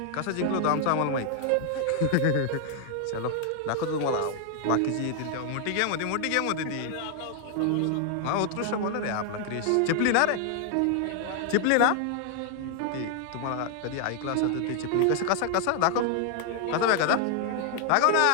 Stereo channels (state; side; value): different; both; correlation 0.00